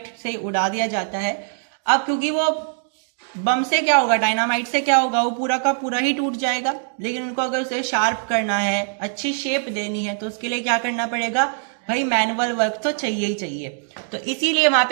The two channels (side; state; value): left; silent; digital silence